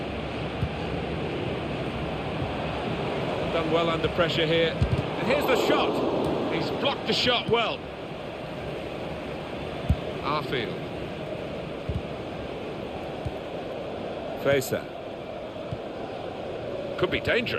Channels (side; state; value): both; identical; correlation 1.00